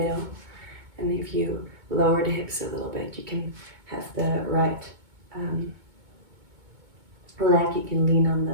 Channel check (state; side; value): late; left; 2.2 ms